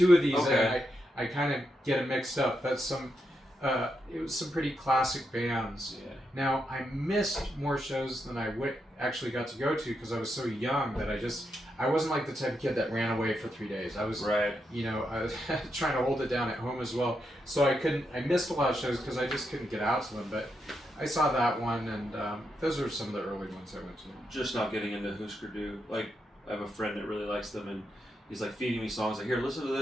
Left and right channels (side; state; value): both; normal; correlation 0.83